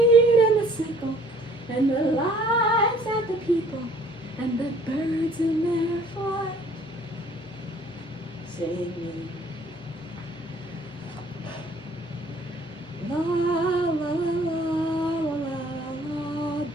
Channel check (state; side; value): normal; both; correlation 0.56